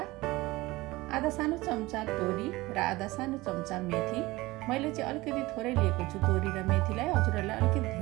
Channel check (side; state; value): left; quieter; 20.2 dB